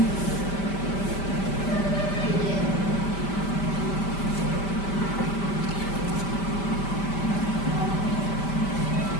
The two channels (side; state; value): right; late; 5.1 ms